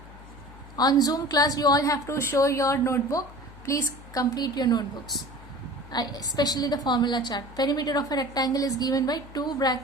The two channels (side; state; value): left; noise; hum, 18 dB below the sound